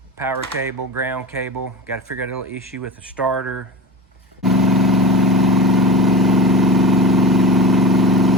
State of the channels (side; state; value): both; normal; correlation 0.28